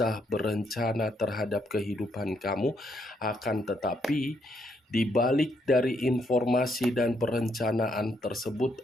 berencana terhadap kehidupan kamu, akan tetapi di balik dari informasi dan perencanaan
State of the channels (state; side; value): normal; both; correlation 0.75